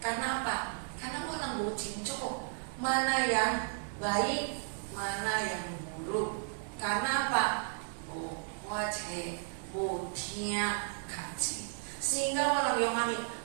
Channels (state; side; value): silent; left; digital silence